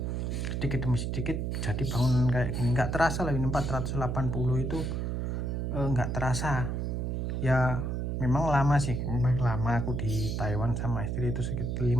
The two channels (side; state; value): right; noise; hum, 1 dB below the sound